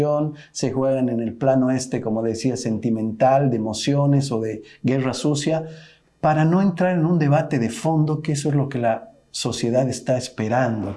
se juegan en el plano como decía, sentimental, de emociones o de guerra sucia, para no entrar en un debate de fondo, que eso es lo que la sociedad está esperando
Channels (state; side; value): identical; both; correlation 1.00